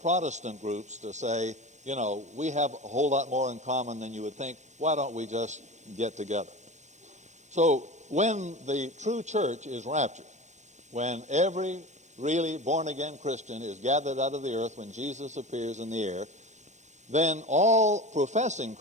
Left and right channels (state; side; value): late; left; 0.34 ms